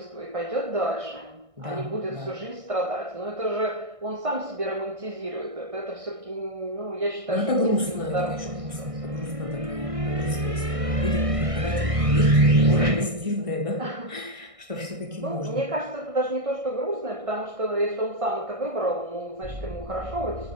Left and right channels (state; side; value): late; left; 1.6 ms